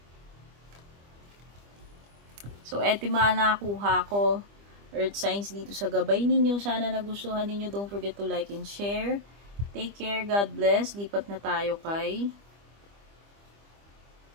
So, eto yung mga nakuha ko, earth signs dito sa gabay ninyo. Sana nagustuhan ninyo. Don't forget to like and share. Take care. God bless. Lipat na tayo kay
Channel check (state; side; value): late; left; 25 ms